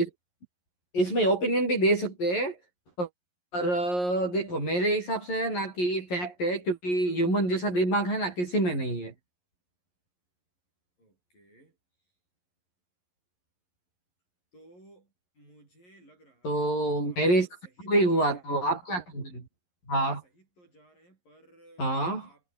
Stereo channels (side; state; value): right; late; 11 ms